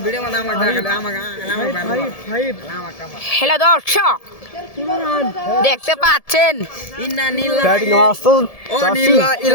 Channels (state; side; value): late; right; 1.7 ms